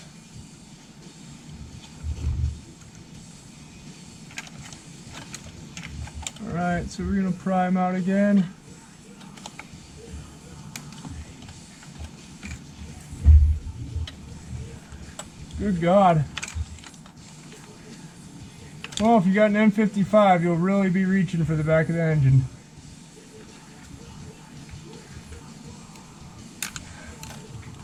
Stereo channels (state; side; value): identical; both; correlation 1.00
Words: Alright, so we're going to pry him out again. Good God. Well, if you got an N55, you'll really be reaching for the back of the engine.